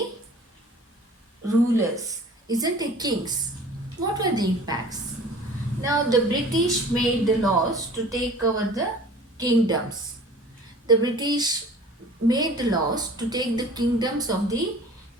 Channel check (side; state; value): both; normal; correlation 0.45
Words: rulers, isn't it kings? What were the impacts? Now the British made the laws to take over the kingdoms. The British made the laws to take the kingdoms of the